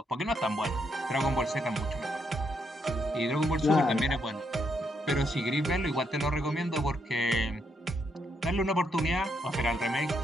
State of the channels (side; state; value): both; normal; correlation 0.77